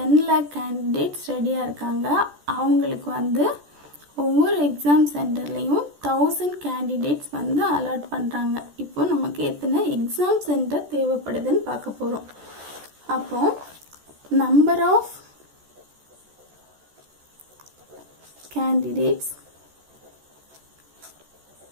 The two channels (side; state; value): left; late; 14 ms